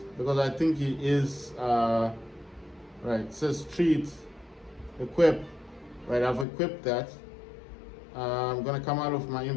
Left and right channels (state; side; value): drops out; right; at 6.5 s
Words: because I think he is right. It says treat, equip. Right, I've equipped that. I'm going to come out of my